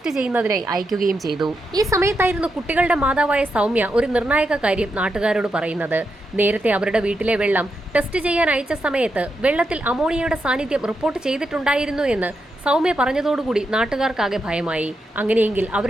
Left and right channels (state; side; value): normal; both; correlation 0.85